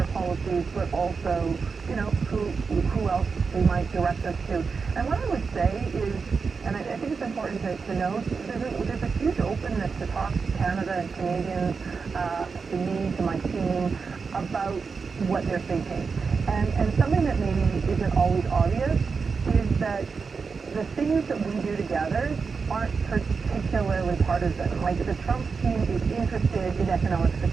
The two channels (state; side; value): quieter; left; 5.1 dB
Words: policies, but also, who else they might direct us to. And what I would say is, and I think it's important to note, there's a huge openness to talk to Canada and Canadians, to me, to my team, about what they're thinking. And something that maybe isn't always obvious is that the things that we do together aren't particularly partisan. Like, the Trump team is interested in economic